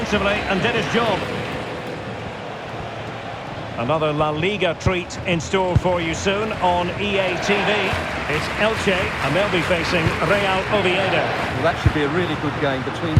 and did his job. Another La Liga treat in store for you soon on EA TV. It's Elche, and they'll be facing Real Oviedo. Well, that should be a really good game between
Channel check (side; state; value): both; identical; correlation 1.00